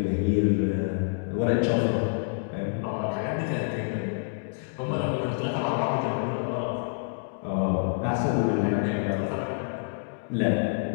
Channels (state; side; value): silent; right; digital silence